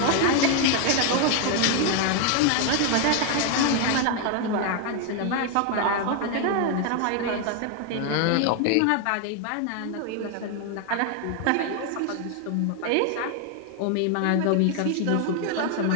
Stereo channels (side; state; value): both; different; correlation 0.01